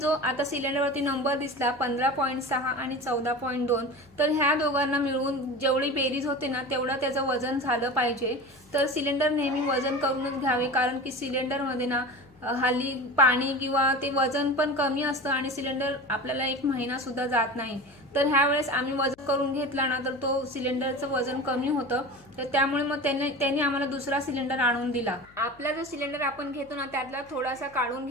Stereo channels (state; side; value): noise; left; hum, 27 dB below the sound